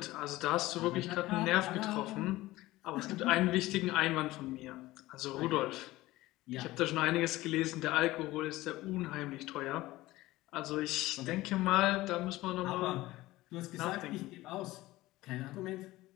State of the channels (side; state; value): right; quieter; 17.9 dB